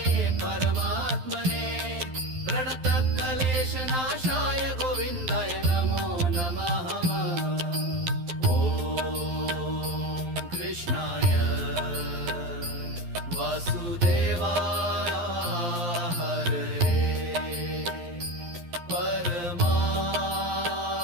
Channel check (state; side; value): late; left; 12 ms